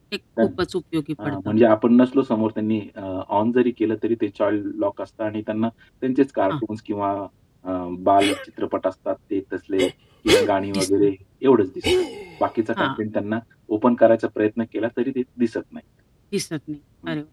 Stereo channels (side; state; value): both; identical; correlation 1.00